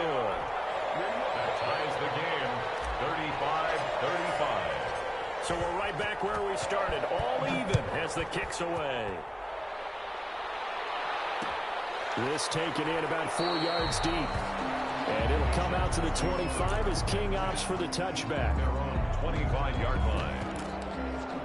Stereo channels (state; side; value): identical; both; correlation 1.00